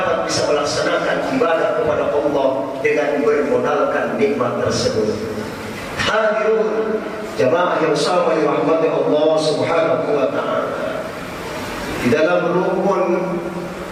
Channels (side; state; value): both; identical; correlation 1.00